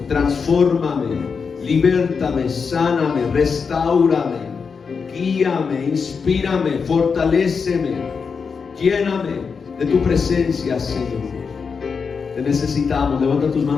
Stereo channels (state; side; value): quieter; right; 5.6 dB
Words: transfórmame, libértame, sáname, restáurame, guíame, inspírame, fortaléceme, lléname de tu presencia, Señor. Te necesitamos. Levanta tus